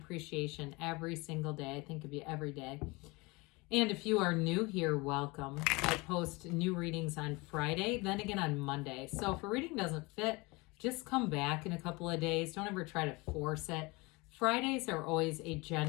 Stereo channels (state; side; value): quieter; right; 25.1 dB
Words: every single day. I think of you every day. And if you are new here, welcome. I post new readings on Friday, then again on Monday. So if a reading doesn't fit, just come back in a couple of days. Don't ever try to force it. Fridays are always a